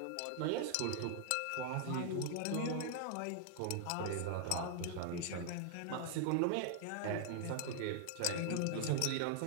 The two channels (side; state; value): both; different; correlation 0.00